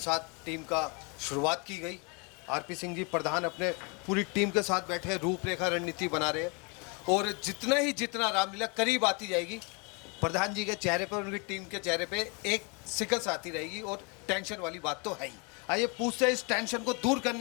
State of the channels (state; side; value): quieter; right; 32.3 dB